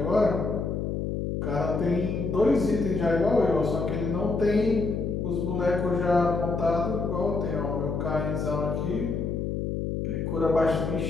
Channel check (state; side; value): noise; left; hum, 2 dB below the sound